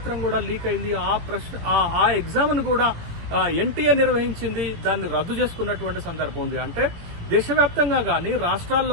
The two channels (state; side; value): late; left; 18 ms